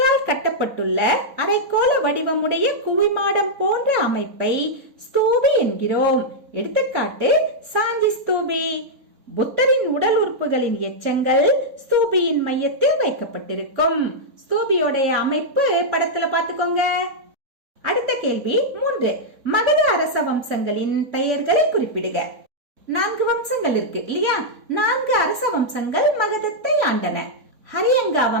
கட்டப்பட்டுள்ள அரைக்கோள வடிவமுடைய குவிமாடம் போன்ற அமைப்பை ஸ்தூபி என்கிறோம். எடுத்துக்காட்டு சாஞ்சி ஸ்தூபி. புத்தரின் உடல் உறுப்புகளின் எச்சங்கள் ஸ்தூபியின் மையத்தில் வைக்கப்பட்டிருக்கும். ஸ்தூபியோடைய அமைப்பு படத்துல பாத்துக்கோங்க. அடுத்த கேள்வி 3 மகத அரச வம்சங்களின் பெயர்களை குறிப்பிடுக. 4 வம்சங்கள் இருக்கு இல்லையா? 4 அரச வம்சங்கள் மகதத்தை ஆண்டன. ஹரியங்கா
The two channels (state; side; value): late; left; 3.5 ms